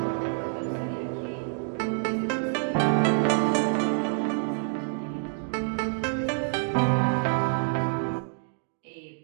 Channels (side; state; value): left; silent; 60 dB below the other